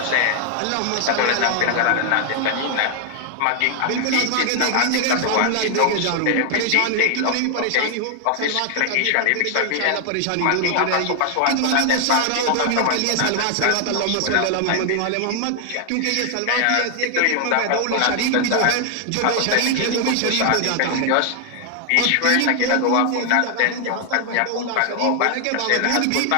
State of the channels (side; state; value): both; different; correlation 0.00